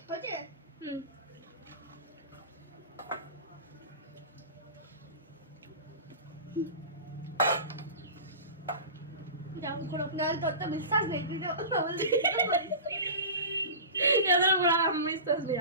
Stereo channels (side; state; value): both; inverted; correlation -0.33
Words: হচ্ছে যাও করো। নাহলে তোর তো বিশ্বাস নেই, তুই তো বলছিস। এদের উপর আর আমার বিশ্বাস নেই